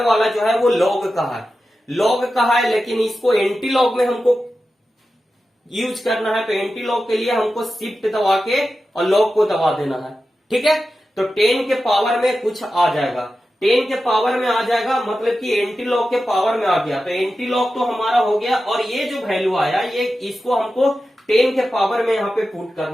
वाला जो है वो लॉग का है, लॉग का है, लेकिन इसको एंटी लॉग में हमको यूज करना है। तो एंटी लॉग के लिए हमको शिफ्ट दबा के और लॉग को दबा देना है, ठीक है। तो 10 के पावर में कुछ आ जाएगा, 10 के पावर में आ जाएगा, मतलब कि एंटी लॉग के पावर में आ गया। तो एंटी लॉग तो हमारा हो गया, और ये जो वैल्यू आया ये इसको हमको 10 के पावर में यहाँ पे पुट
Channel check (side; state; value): both; normal; correlation 0.92